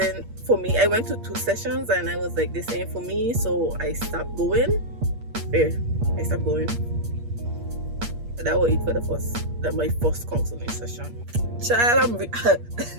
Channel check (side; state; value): left; late; 8.5 ms